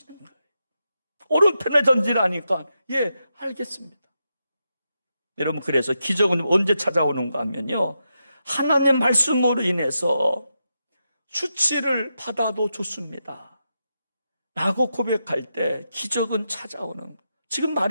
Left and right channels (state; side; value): inverted; both; correlation -0.86